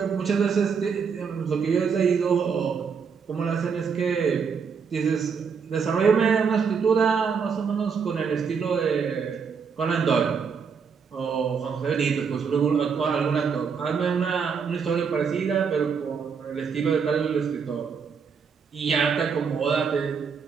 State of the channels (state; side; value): quieter; left; 6.1 dB